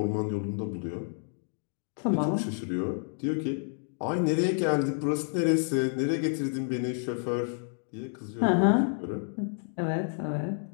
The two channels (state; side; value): silent; right; 58 dB below the other